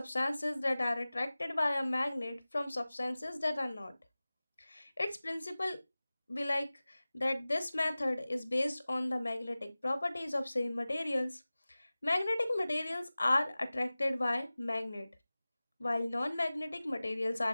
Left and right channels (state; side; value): inverted; both; correlation -0.98